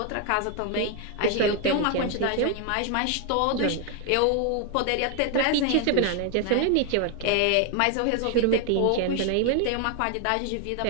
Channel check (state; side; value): different; both; correlation 0.01